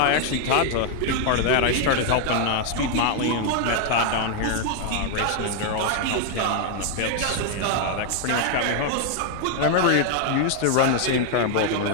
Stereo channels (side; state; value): both; different; correlation 0.00